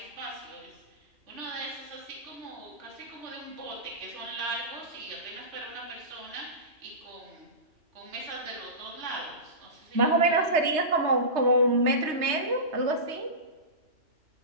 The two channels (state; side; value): late; left; 3.2 ms